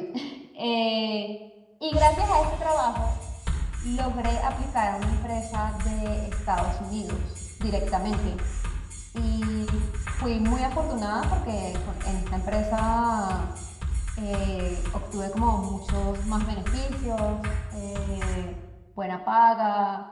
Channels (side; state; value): both; identical; correlation 1.00